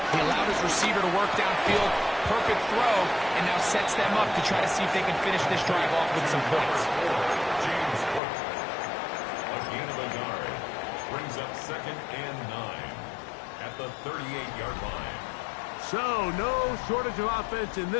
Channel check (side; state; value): right; drops out; at 8.2 s